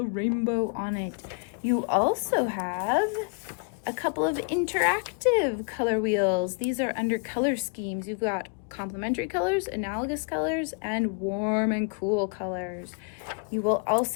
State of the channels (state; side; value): quieter; right; 36.7 dB